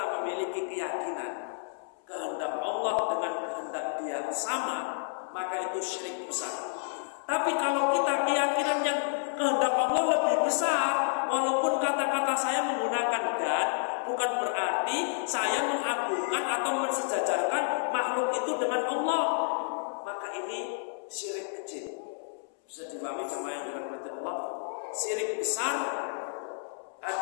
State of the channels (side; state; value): right; silent; 58 dB below the other